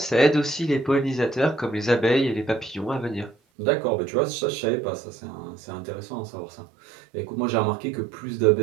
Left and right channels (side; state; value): left; drops out; at 3.4 s